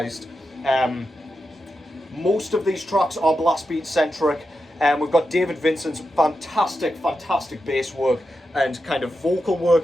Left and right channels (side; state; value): both; normal; correlation 0.88